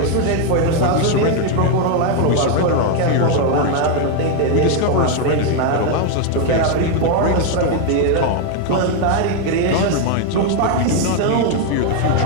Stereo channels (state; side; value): different; both; correlation 0.01